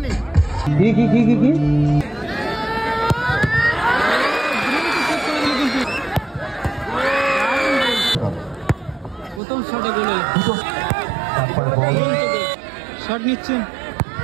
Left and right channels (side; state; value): left; drops out; at 9.4 s